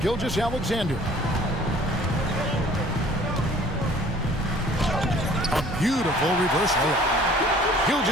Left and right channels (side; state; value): both; normal; correlation 0.52